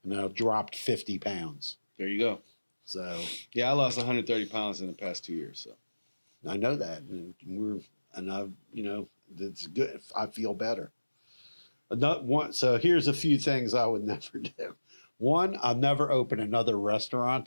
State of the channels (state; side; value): inverted; both; correlation -1.00